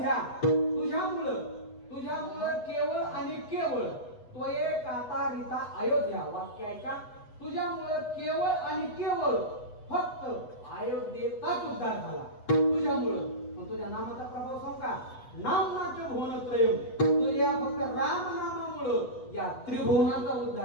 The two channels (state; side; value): late; right; 8.1 ms